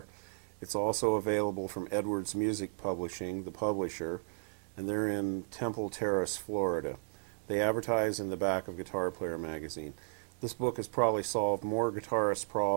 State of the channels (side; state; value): left; silent; digital silence